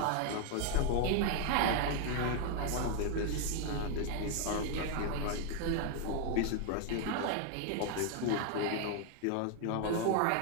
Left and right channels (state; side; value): different; both; correlation 0.00